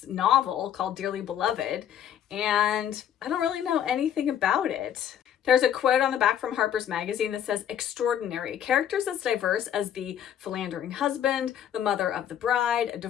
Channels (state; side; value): quieter; right; 9.8 dB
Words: novel called Dearly Beloved, and I don't really know anything about it. There's a quote on the back from Harper's Magazine that says, "Extraordinary. Characters as diverse as the philandering husband, the mother of the bride, a